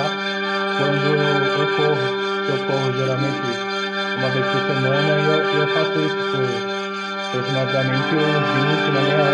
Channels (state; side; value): identical; both; correlation 1.00